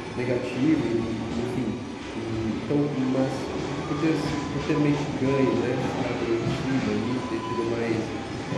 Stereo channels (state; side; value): identical; both; correlation 1.00